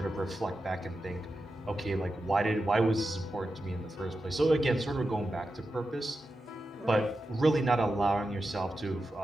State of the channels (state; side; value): normal; both; correlation 0.90